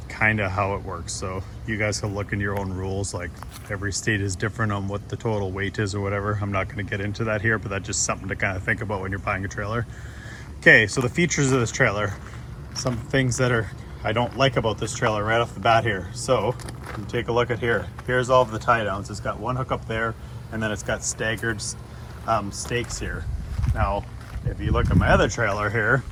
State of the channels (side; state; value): both; identical; correlation 1.00